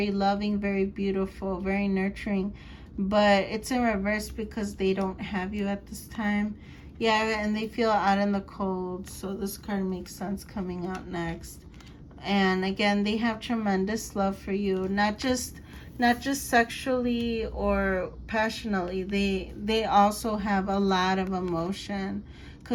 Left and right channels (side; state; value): both; identical; correlation 1.00